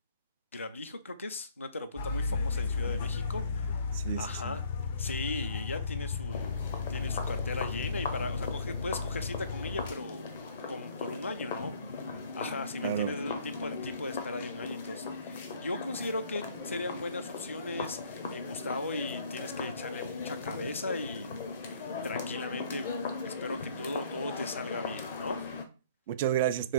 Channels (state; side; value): inverted; both; correlation -0.58